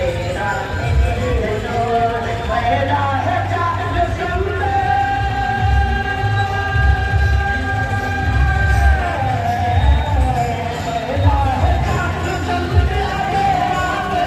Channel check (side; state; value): both; identical; correlation 1.00